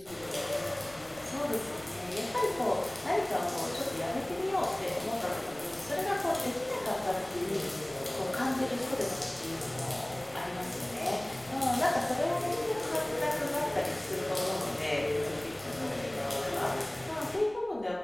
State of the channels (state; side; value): noise; right; rumble, 23 dB below the sound